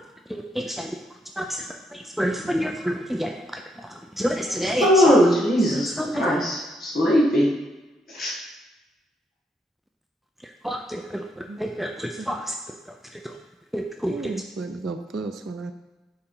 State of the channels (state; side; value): normal; both; correlation 0.76